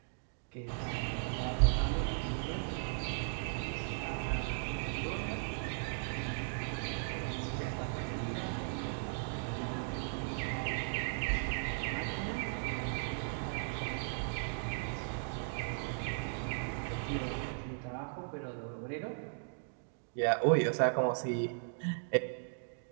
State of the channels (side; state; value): left; silent; digital silence